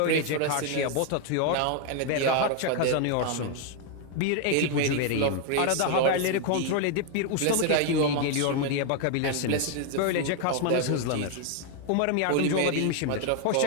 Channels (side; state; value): both; different; correlation 0.01